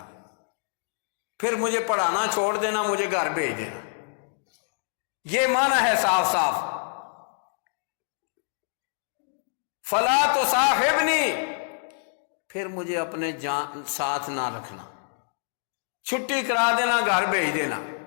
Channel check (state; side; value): silent; right; digital silence